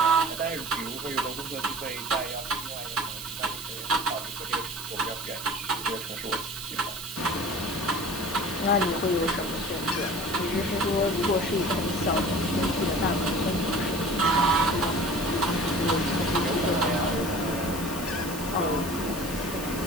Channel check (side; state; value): right; noise; hiss, 11 dB below the sound